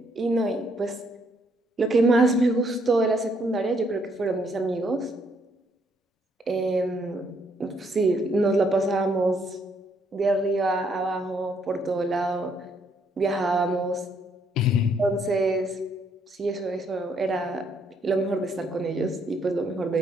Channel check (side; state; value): both; normal; correlation 0.70